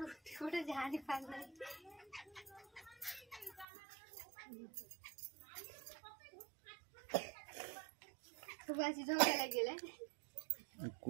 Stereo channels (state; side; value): drops out; left; at 3.7 s